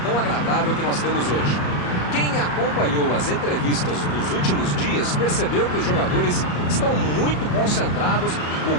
tão agradável que nós temos hoje. Quem acompanhou as entrevistas dos últimos dias percebeu que os jogadores estão muito concentrados e com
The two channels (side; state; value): right; late; 34 ms